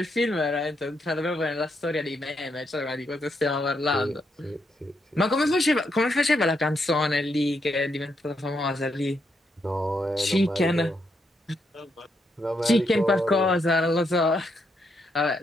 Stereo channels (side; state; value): both; normal; correlation 0.79